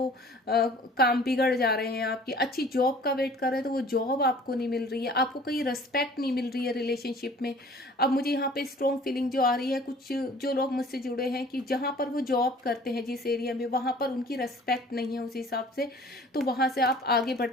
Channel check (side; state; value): both; normal; correlation 0.49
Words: काम बिगड़ जा रहे हैं। आपकी अच्छी जॉब का वेट कर रहे हैं तो वो जॉब आपको नहीं मिल रही है, आपको कहीं रेस्पेक्ट नहीं मिल रही है रिलेशनशिप में। अब मुझे यहाँ पे स्ट्रॉन्ग फीलिंग जो आ रही है, कुछ जो लोग मुझसे जुड़े हैं कि जहां पर वो जॉब करते हैं जिस एरिया में, वहां पर उनकी रेस्पेक्ट नहीं है उस हिसाब से, तो वहां से आप आगे बढ़ते,